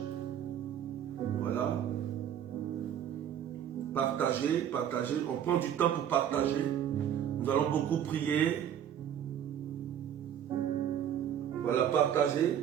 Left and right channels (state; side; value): quieter; left; 9.6 dB